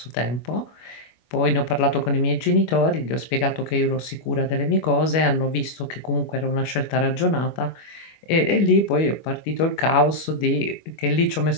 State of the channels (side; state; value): right; late; 25 ms